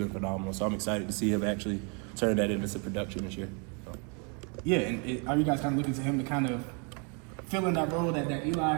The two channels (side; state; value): left; quieter; 36.0 dB